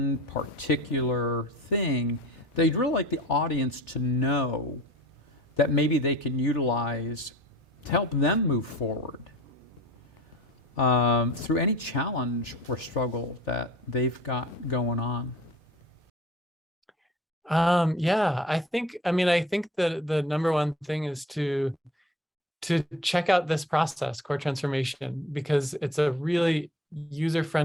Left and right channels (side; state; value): both; normal; correlation 0.44